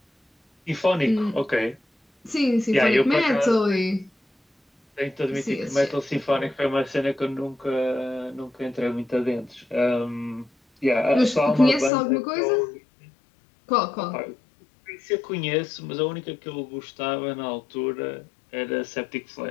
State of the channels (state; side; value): drops out; right; at 11.9 s